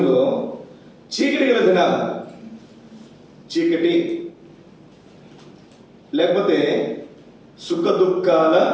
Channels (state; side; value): identical; both; correlation 1.00